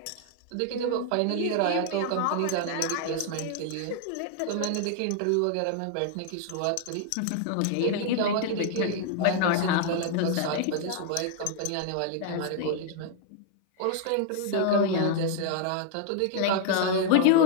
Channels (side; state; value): both; different; correlation 0.00